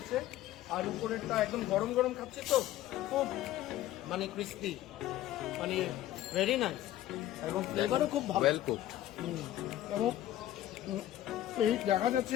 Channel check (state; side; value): quieter; right; 13.5 dB